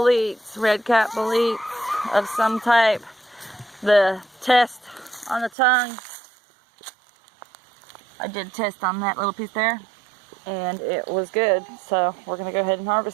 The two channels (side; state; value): left; drops out; at 5.5 s